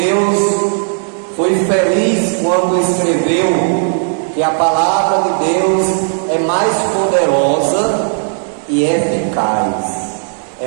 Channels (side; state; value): left; silent; digital silence